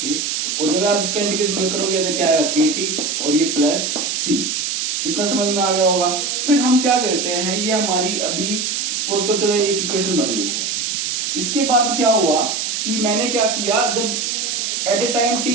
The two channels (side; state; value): right; noise; hiss, 1 dB below the sound